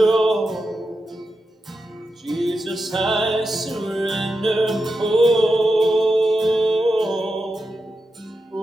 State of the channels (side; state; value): both; normal; correlation 0.89